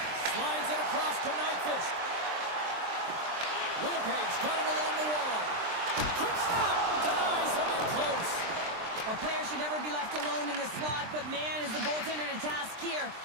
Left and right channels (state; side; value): late; left; 23 ms